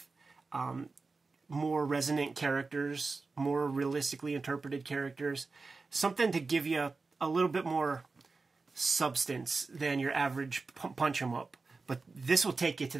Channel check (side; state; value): left; quieter; 4.0 dB